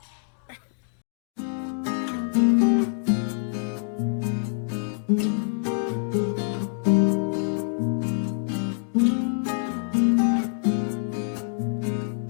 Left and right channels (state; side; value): silent; right; digital silence